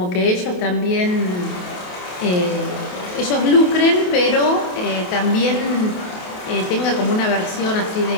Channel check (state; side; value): late; right; 28 ms